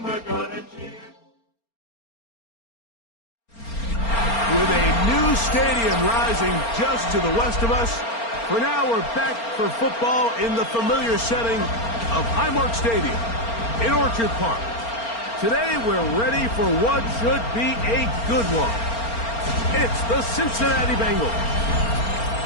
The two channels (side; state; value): right; late; 4.3 ms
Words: we're gonna cheer. With a new stadium rising just to the west of us, for now we're back for football in the familiar setting of Highmark Stadium in Orchard Park. Today we're ready for what should be a good one. It's the Cincinnati Bengals